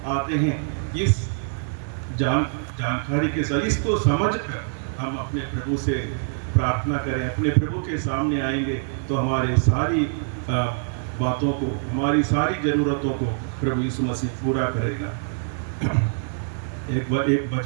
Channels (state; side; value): silent; left; digital silence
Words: आते हैं, इस जानकारी के साथ, इसको समझकर हम अपने प्रभु से प्रार्थना करें, अपने प्रभु के सामने आएंगे, तो हमारे सारी बातों को, हमारी सारी ज़रूरतों को प्रभु यीशु मसीह पूरा करेगा। एक